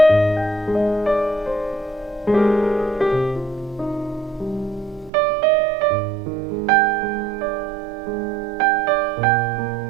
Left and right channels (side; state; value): left; drops out; at 5.1 s